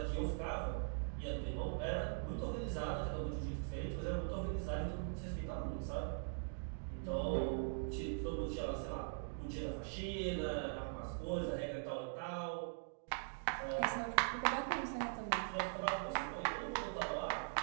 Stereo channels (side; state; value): left; silent; digital silence